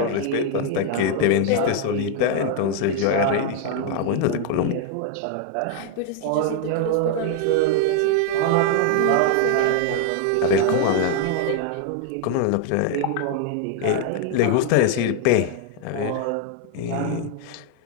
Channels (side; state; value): both; different; correlation 0.00